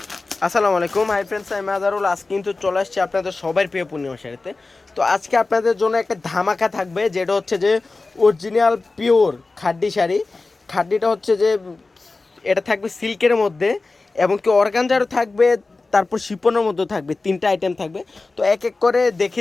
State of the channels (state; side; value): quieter; right; 3.6 dB